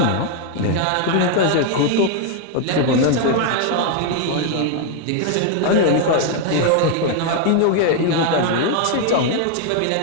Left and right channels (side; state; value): both; different; correlation 0.00